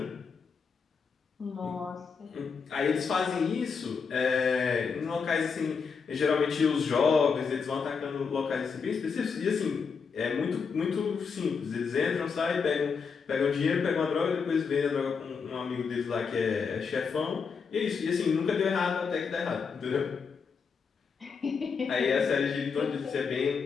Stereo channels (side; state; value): right; quieter; 5.6 dB